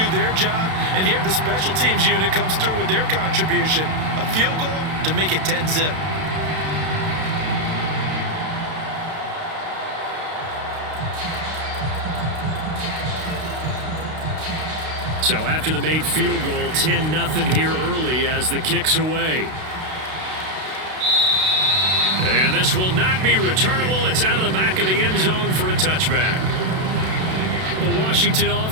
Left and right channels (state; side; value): late; left; 32 ms